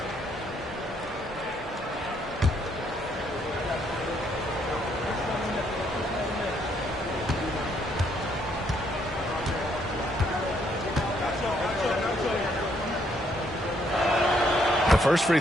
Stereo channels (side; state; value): both; normal; correlation 0.70